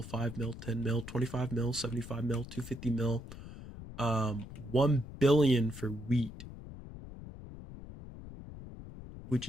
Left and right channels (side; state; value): left; noise; rumble, 13 dB below the sound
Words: 5 mil, 10 mil, 25 mil, 75 mil, 250 mil, 1 billion for wheat, which